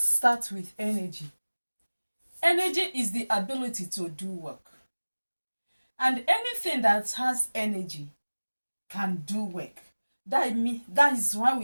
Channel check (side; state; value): both; inverted; correlation -1.00